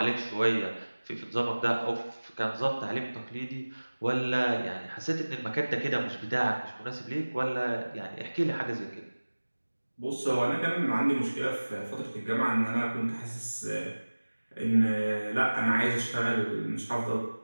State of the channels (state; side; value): inverted; both; correlation -1.00